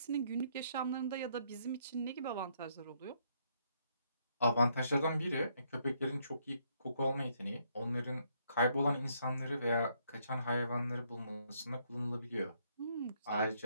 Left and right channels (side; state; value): both; inverted; correlation -0.72